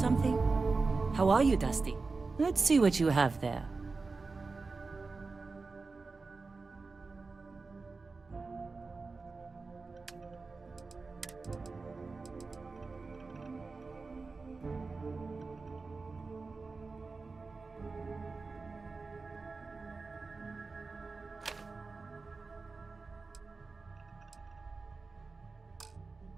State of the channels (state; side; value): quieter; left; 4.0 dB